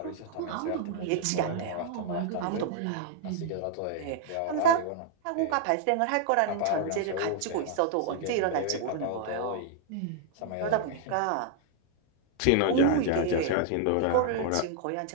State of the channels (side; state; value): both; different; correlation 0.00